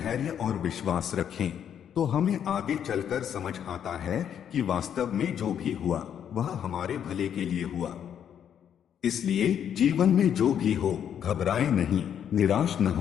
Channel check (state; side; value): quieter; right; 9.0 dB